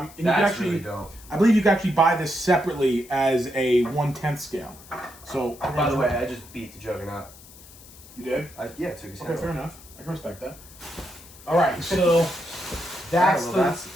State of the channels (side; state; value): left; noise; hiss, 20 dB below the sound